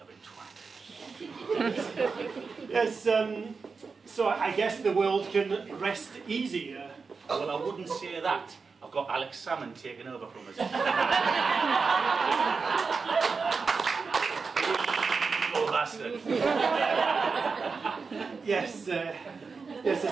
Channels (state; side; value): quieter; left; 4.8 dB